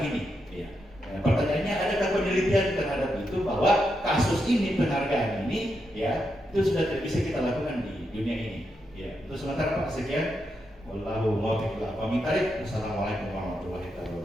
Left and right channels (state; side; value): normal; both; correlation 0.84